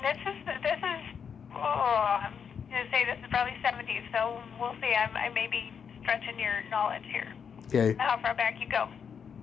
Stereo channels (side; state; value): right; quieter; 7.0 dB